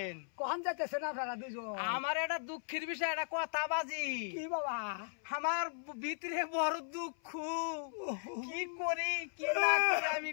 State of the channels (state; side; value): silent; right; 53 dB below the other